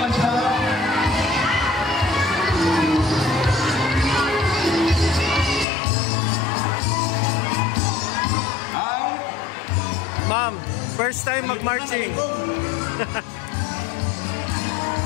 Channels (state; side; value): drops out; right; at 5.7 s